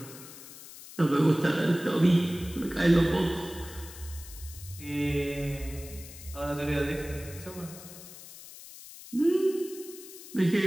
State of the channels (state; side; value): noise; left; hiss, 16 dB below the sound